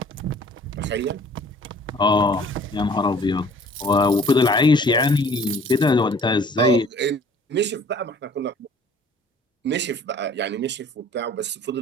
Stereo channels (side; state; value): both; normal; correlation 0.52